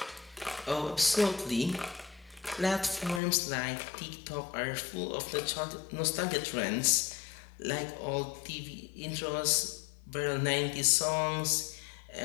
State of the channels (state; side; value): drops out; right; at 3.2 s